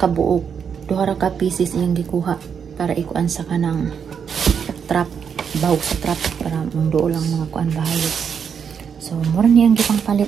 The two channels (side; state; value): left; quieter; 7.1 dB